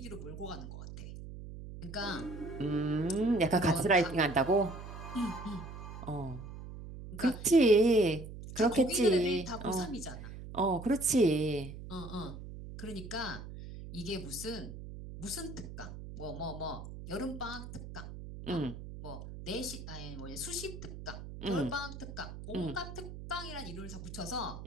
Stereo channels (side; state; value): right; noise; hum, 11 dB below the sound